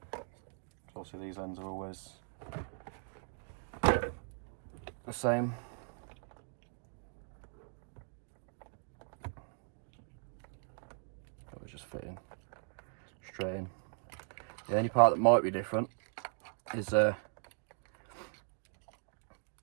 So obviously these ends are always the same. So it's just fitting straight in. The only part that might be different is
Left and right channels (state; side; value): silent; left; 52 dB below the other